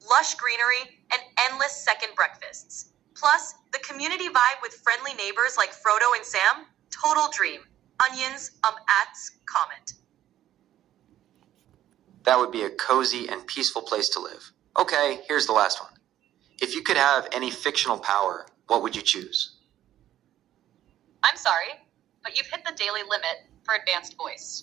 lush greenery, and endless second breakfasts. Plus, the community vibe with friendly neighbors like Frodo and Sam, total dream. Onions, comment. That would be a cozy and peaceful place to live. Okay, here's the last one. If you could have any fictional power, what would you choose? I'm sorry, but you've hit the daily limit for advanced voice.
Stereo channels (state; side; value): quieter; left; 12.4 dB